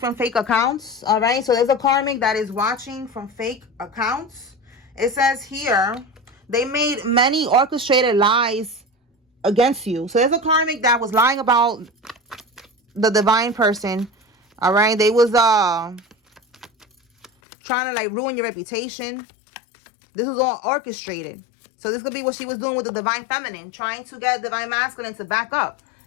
fake accounts. All right. So there's a karmic that is watching from fake accounts. It says here they made many orchestrated lies against you. So there's a karmic that was lying about the divine person. All right. They was trying to like ruin your reputation. This was all orchestrated. So this could be what she was doing with the divine feminine, trying to get divine masculine to back up.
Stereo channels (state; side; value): drops out; right; at 17.3 s